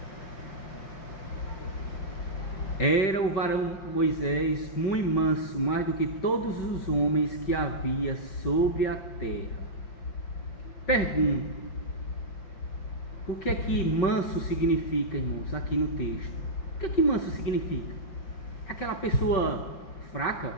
Era o varão Moisés muito manso, mais do que todos os homens que havia sobre a terra. Pergunto: o que é que manso significa, irmãos, aqui no texto? O que é que manso significa? Aquela pessoa fraca?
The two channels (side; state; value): right; late; 5.2 ms